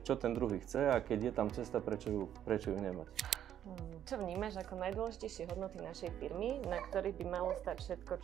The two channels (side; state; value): left; quieter; 10.4 dB